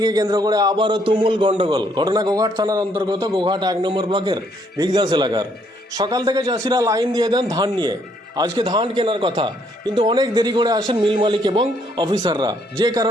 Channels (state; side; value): normal; both; correlation 0.69